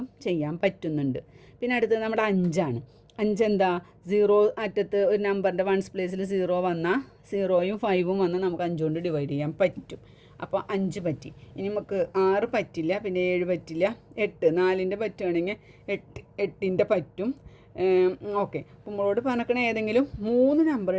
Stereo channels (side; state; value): both; identical; correlation 1.00